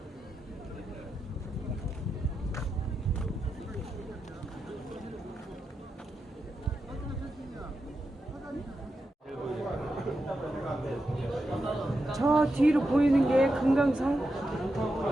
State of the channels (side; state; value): both; normal; correlation 0.88